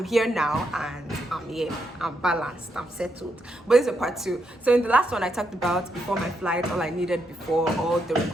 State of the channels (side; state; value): both; normal; correlation 0.80